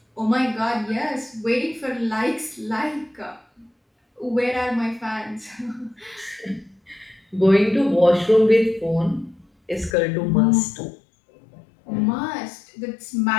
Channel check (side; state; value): right; drops out; at 10.0 s